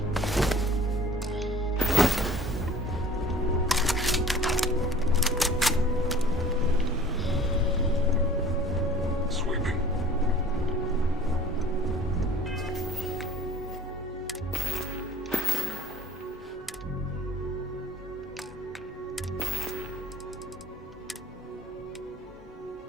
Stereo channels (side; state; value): both; normal; correlation 0.48